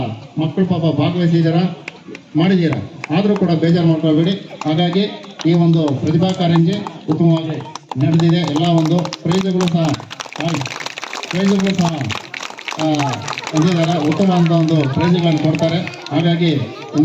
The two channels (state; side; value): identical; both; correlation 1.00